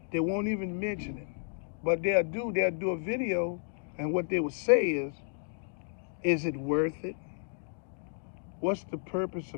They won't even mention it. But they'll do a video, and what they will say is, Is it worth it? What's the purpose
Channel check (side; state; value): right; silent; digital silence